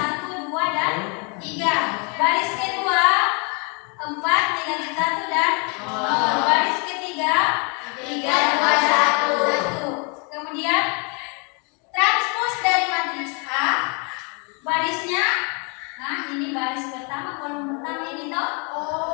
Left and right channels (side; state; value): right; quieter; 34.4 dB